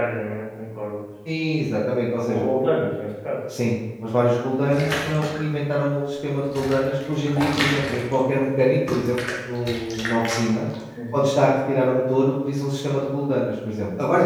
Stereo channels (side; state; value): both; identical; correlation 1.00